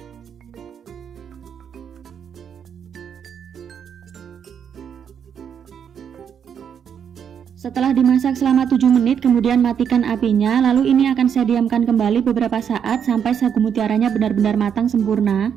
Setelah dimasak selama 7 menit, kemudian matikan apinya. Lalu ini akan saya diamkan kembali beberapa saat sampai sagu mutiaranya benar-benar matang sempurna.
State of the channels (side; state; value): left; quieter; 7.9 dB